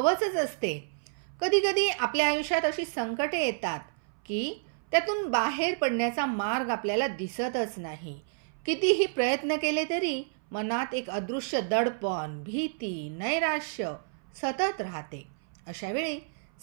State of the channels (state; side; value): silent; left; 58 dB below the other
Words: असते. कधी कधी आपल्या आयुष्यात अशी संकटे येतात की त्यातून बाहेर पडण्याचा मार्ग आपल्याला दिसतच नाही. कितीही प्रयत्न केले तरी मनात एक अदृश्य दडपण, भीती, नैराश्य सतत राहते. अशा वेळी